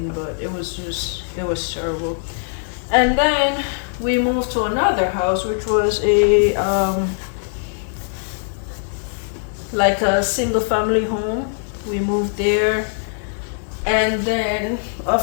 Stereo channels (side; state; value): right; silent; digital silence